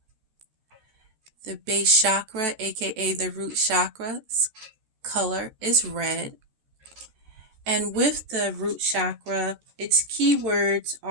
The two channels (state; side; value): late; left; 14 ms